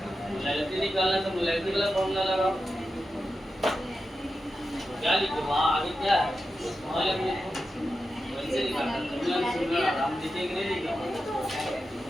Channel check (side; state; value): both; normal; correlation 0.90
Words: मोलैरिटी निकालना है तो मोलैरिटी वाला फॉर्मूला लगाओ। क्या लिखे वहाँ आगे क्या है? वहाँ वैसे निकालना हम लिखेंगे नहीं लिखा